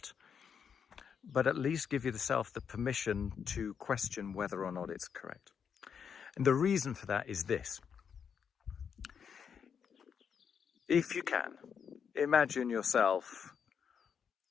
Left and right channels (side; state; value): right; quieter; 7.1 dB